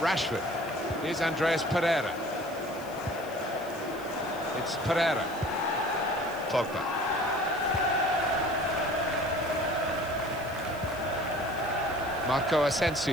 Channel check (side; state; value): left; noise; hiss, 21 dB below the sound